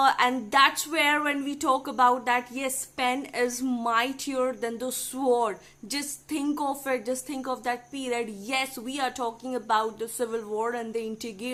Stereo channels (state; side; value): identical; both; correlation 1.00